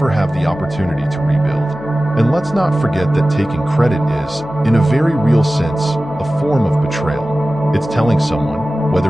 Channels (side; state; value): right; noise; hum, 21 dB below the sound